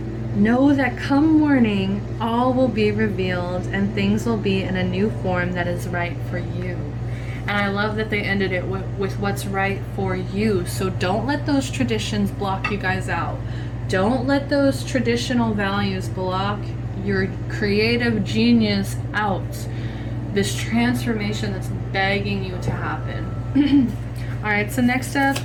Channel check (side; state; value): both; identical; correlation 1.00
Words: know that come morning, all will be revealed and things will be in a new form that is right for you. And I love that they ended it with what's right for you. So don't let those traditions block you guys out. Don't let those traditional values block your creative genius out. This transformation that's begging you to happen. All right, so next up,